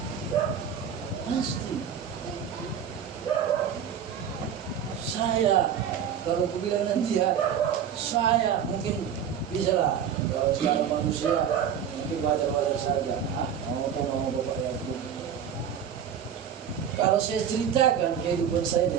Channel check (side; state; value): left; quieter; 8.4 dB